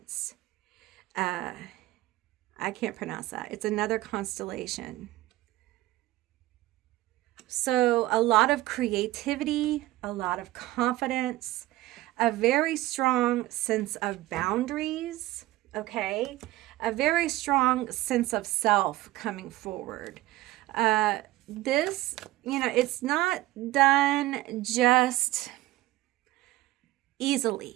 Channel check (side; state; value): left; quieter; 17.1 dB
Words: I can't pronounce that. It's another constellation. So a lot of creativity, a lot of confidence, a very strong sense of boundaries, okay? A very strong sense of self coming forward. This, it's not done just